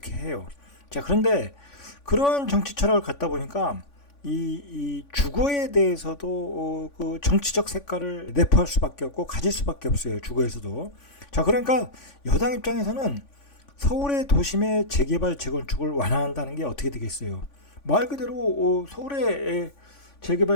해요. 자, 그런데 그런 정치 철학을 갖다 보니까 이 주거에 대해서도 그 정치적 색깔을 내포할 수밖에 없고 가질 수밖에 없어요. 주거에서도. 자, 그러니까 여당 입장에서는 서울의 도심의 재개발, 재건축을 완화한다는 게 어떻게 되겠어요? 말 그대로 서울의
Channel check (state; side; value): late; right; 3.5 ms